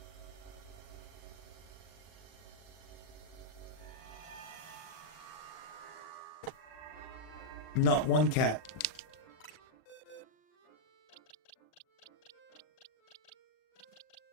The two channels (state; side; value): late; right; 40 ms